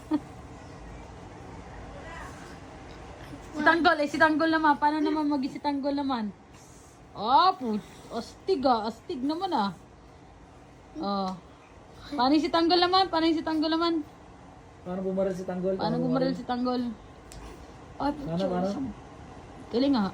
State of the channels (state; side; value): identical; both; correlation 1.00